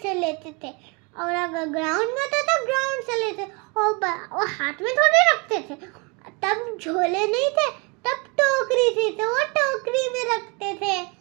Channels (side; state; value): left; quieter; 30.9 dB